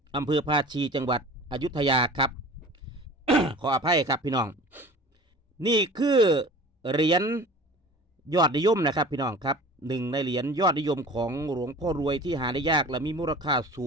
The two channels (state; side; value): normal; both; correlation 0.40